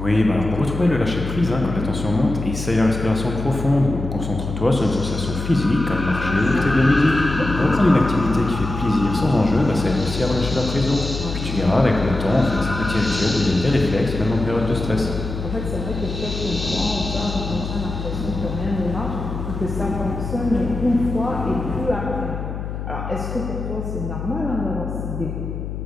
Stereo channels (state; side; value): noise; left; hum, 6 dB below the sound